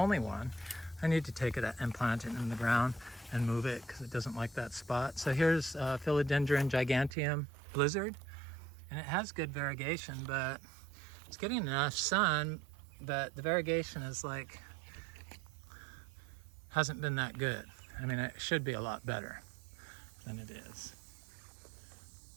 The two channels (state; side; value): drops out; left; at 7.2 s